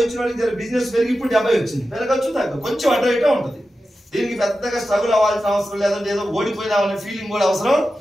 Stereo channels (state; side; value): normal; both; correlation 0.92